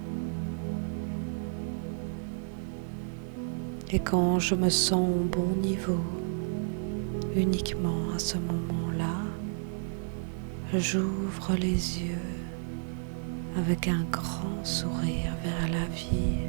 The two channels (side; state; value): left; silent; digital silence